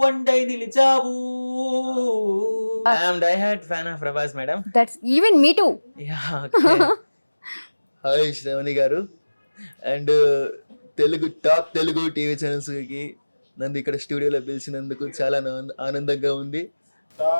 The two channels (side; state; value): both; inverted; correlation -1.00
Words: వండై నిలిచావు. I'm diehard fan of Prabhas madam. That's even me too. Hi Sravani garu. And top Telugu TV ఛానల్స్కి నన్ను ఇక్కడ స్టూడియోలో పిలిచినందుకు చాలా ఆనందంగా ఉంది.